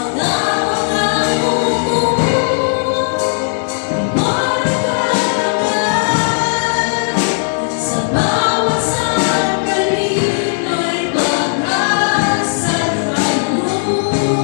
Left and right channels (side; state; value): right; silent; digital silence